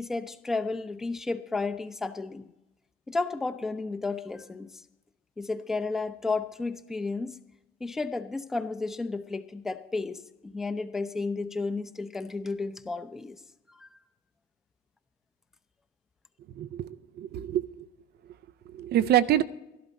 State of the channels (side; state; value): both; normal; correlation 0.56